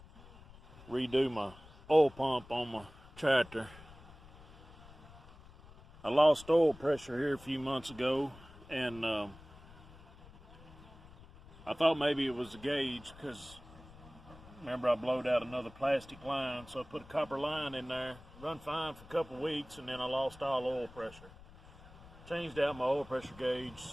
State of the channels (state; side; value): noise; left; rumble, 20 dB below the sound